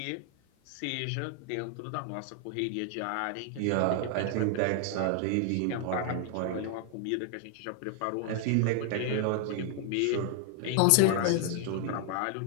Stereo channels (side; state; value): both; different; correlation 0.00